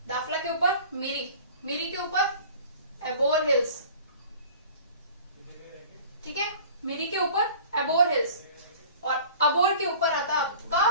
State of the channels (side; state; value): both; inverted; correlation -0.44